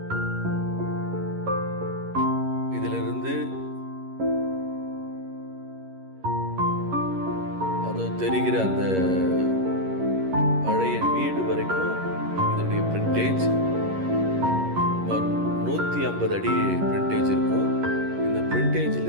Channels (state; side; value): late; left; 11 ms